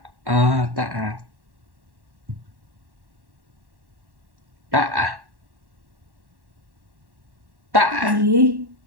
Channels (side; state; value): left; late; 1.1 ms